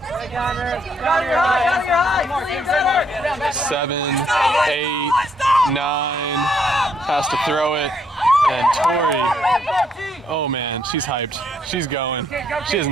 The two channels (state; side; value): normal; both; correlation 0.71